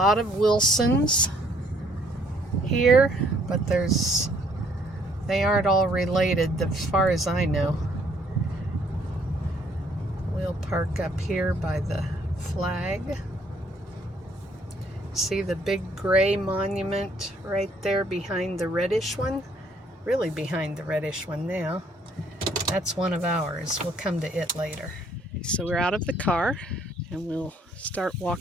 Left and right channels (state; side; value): normal; both; correlation 0.64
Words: of Wilsons here, but they aren't all related as far as I know. We'll park up here by the flag. See the big gray monument right there behind the reddish one? Really behind the reddish one now. That's one of ours. We'll come to it later. So we're out of the car and we'll start